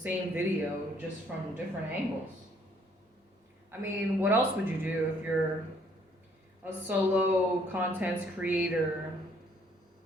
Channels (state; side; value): normal; both; correlation 0.64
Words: video just from different angles. I mean, what else would you do if you're a solo content creator